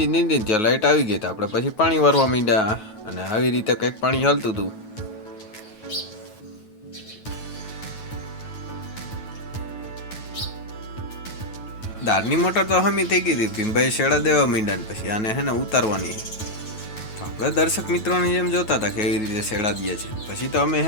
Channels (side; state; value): right; late; 9.3 ms